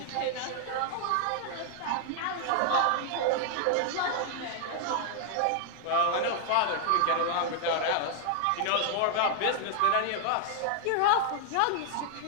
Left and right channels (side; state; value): both; different; correlation 0.00